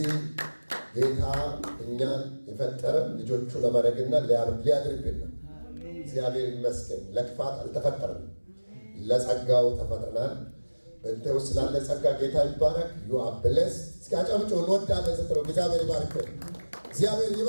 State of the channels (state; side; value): inverted; both; correlation -1.00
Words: ጌታ እኛን የፈጠረ ልጆቹ ለማድረግና ሊያድርብን ነው። እግዚአብሔር ይመስገን። ለክፋት አልተፈጠረም፣ ለጸጋው ተፈጥረናል። በእንተ ውስጥ ስላለ ጸጋ ጌታ ይባረክ። ዩ አር ብሌስድ። እስኪ አጨብጭቡ። እንወዳለን ስትለው እግዚአብሔር ይባርክ፣ እግዚአብሔር